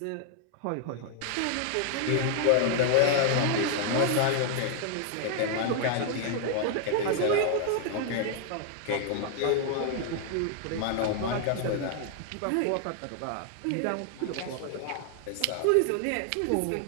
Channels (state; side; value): different; both; correlation 0.00